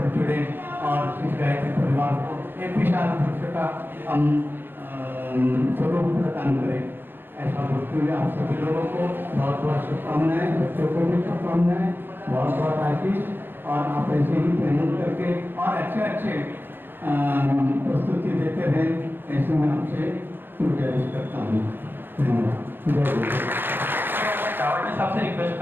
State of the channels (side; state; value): left; late; 0.099 ms